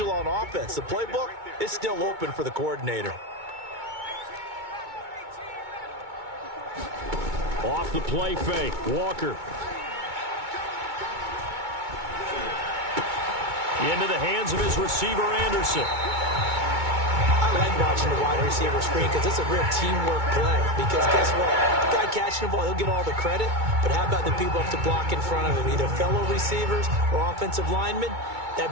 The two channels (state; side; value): late; left; 2.2 ms